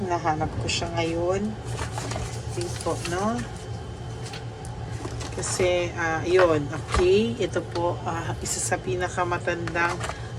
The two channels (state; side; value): identical; both; correlation 1.00